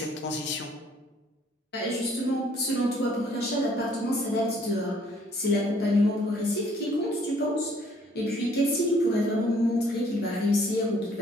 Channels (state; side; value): normal; both; correlation 0.61